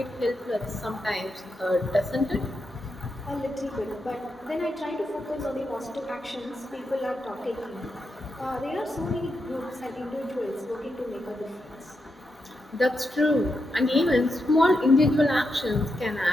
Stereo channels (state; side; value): normal; both; correlation 0.85